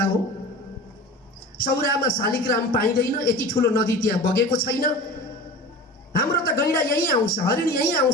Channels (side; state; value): both; normal; correlation 0.35